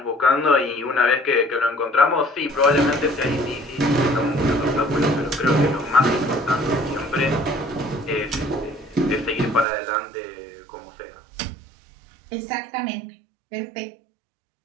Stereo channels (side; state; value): left; drops out; at 9.7 s